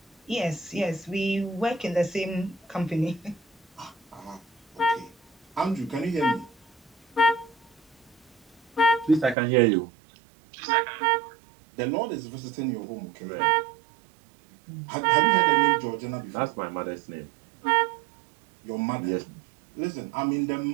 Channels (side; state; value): left; drops out; at 9.3 s